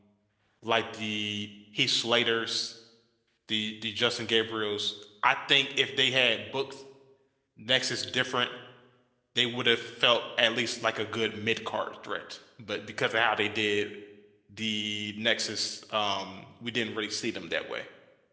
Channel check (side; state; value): both; identical; correlation 1.00